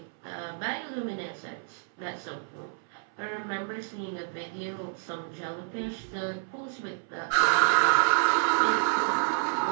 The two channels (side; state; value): left; silent; 58 dB below the other